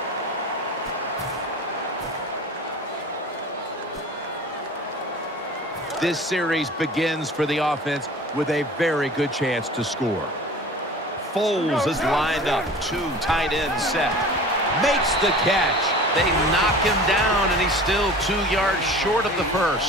This series begins for the offense with a very good chance to score. Foles is lined up. 2 tight ends set. Makes the catch. They knock him down, and he's still 2 yards short of the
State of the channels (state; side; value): normal; both; correlation 0.41